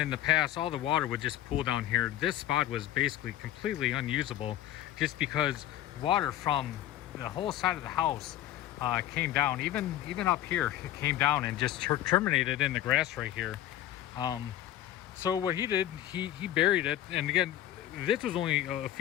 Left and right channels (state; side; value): quieter; right; 12.9 dB